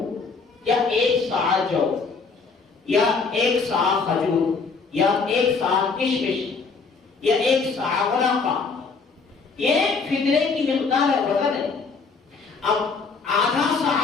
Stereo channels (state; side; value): quieter; right; 4.7 dB